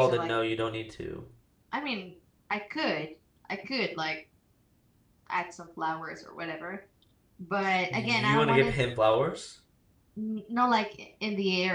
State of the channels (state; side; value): identical; both; correlation 1.00